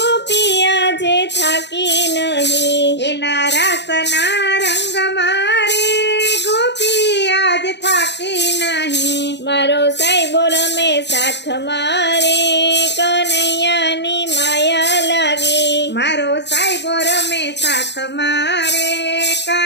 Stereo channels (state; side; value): late; right; 0.50 ms